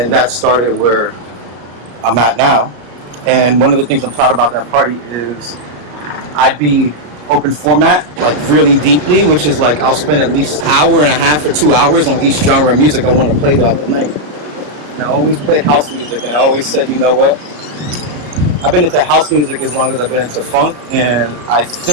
that started where I'm at now. And one of the things I'm proud about that party is I'd be open format, like really deeply, which is like I'll spend at least an hour and a half or 2 hours on each genre of music I want to play throughout the night. And I always played house music, and I always said, you know what? I've been into house music as long as I've been into funk, and I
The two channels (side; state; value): left; late; 33 ms